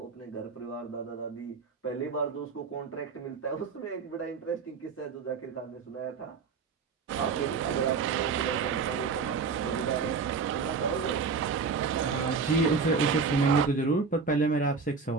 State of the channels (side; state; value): left; quieter; 5.1 dB